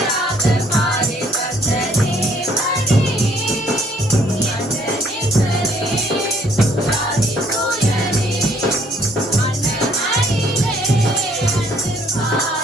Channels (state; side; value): normal; both; correlation 0.64